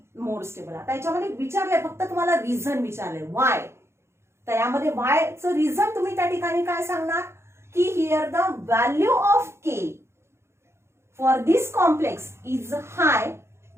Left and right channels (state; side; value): late; left; 0.13 ms